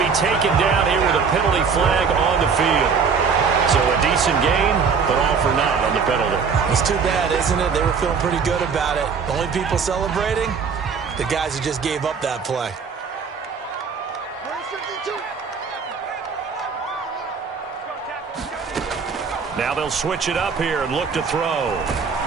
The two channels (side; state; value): left; quieter; 5.8 dB